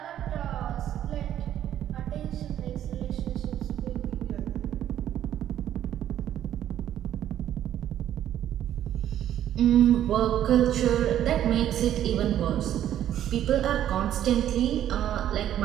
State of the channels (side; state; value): left; quieter; 11.3 dB